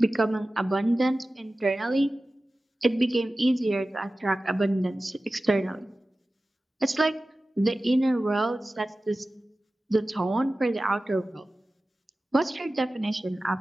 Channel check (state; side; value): normal; both; correlation 0.96